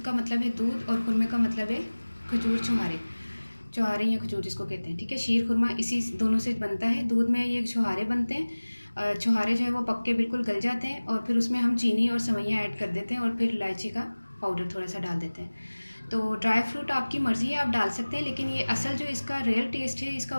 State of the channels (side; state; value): both; inverted; correlation -1.00